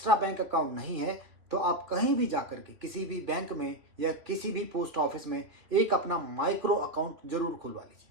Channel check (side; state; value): left; late; 3.0 ms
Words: बैंक अकाउंट नहीं है तो आप कहीं भी जाकर के किसी भी बैंक में या किसी भी पोस्ट ऑफिस में एक अपना माइक्रो अकाउंट जरूर खुलवा लीजिए।